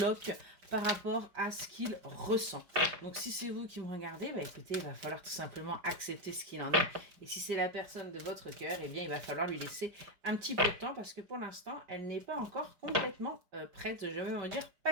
par rapport à ce qu'il ressent. Donc si c'est vous qui me regardez, écoutez, il va falloir tout simplement accepter ce qu'il en est. Et si c'est la personne de votre cœur, il va falloir lui laisser un petit peu de temps parce que pour l'instant, elle n'est pas encore complètement prête. Je vais me dire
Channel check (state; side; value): late; left; 5.0 ms